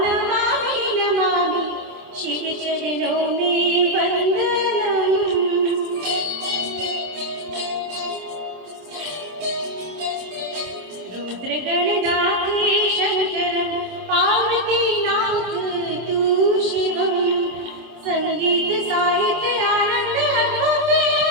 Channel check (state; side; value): late; left; 26 ms